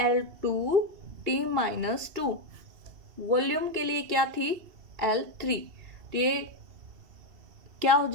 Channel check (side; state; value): left; late; 2.7 ms